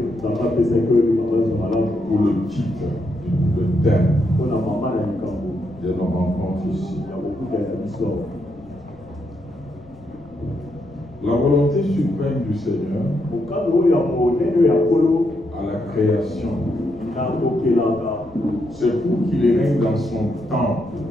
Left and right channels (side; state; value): left; noise; rumble, 24 dB below the sound